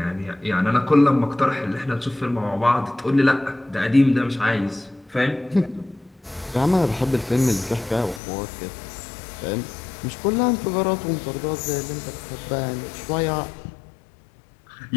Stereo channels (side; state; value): right; drops out; at 8.2 s